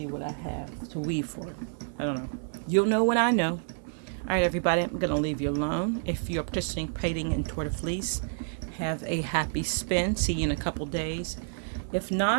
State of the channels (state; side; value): silent; left; 58 dB below the other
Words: what I have to weave for it. I don't know. You'll know when I know. All right, everybody, I'm going to leave you alone. If you're participating in Tour de Fleece, have a happy spin. See you in a couple days. If